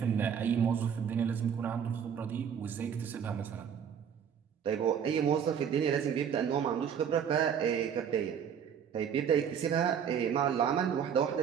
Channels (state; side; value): quieter; left; 7.9 dB